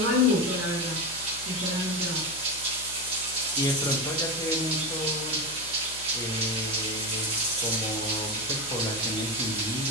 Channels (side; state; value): left; noise; hum, 18 dB below the sound